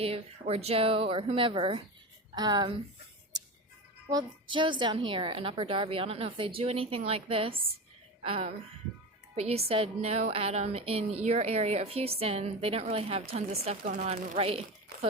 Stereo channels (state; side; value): normal; both; correlation 0.24